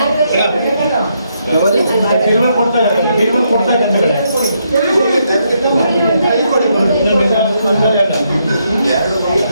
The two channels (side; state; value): both; inverted; correlation -0.77